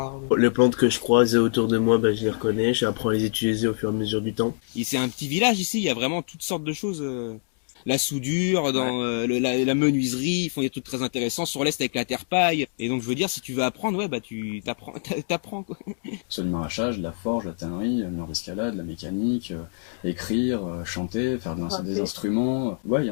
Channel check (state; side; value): silent; right; digital silence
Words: Les plantes que je croise autour de moi, je les reconnais, j'apprends à les utiliser au fur et à mesure du temps. Et c'est un petit village ici, il y a vraiment toutes sortes de choses. La soudure, dans la menuiserie, ils font des trucs très intéressants. Sur l'Est avec la terre-paille. Et donc je veux dire, si tu veux apprendre, tu t'apprends quoi. Soit du maraîchage, de la forge, de la tannerie, mur d'escalade, de la mécanique, écrire, chanter, faire des instruments. Ouais, il y